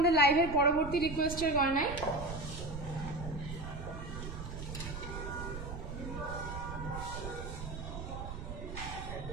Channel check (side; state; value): right; noise; rumble, 7 dB below the sound